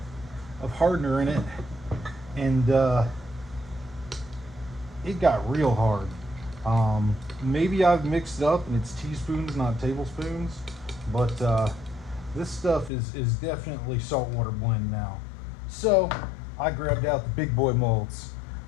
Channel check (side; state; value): right; drops out; at 12.9 s